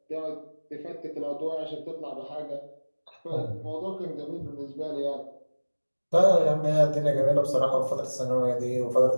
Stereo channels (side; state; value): both; inverted; correlation -1.00